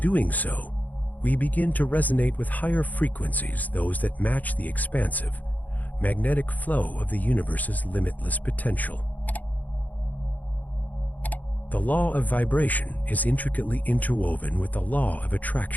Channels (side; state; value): right; late; 0.080 ms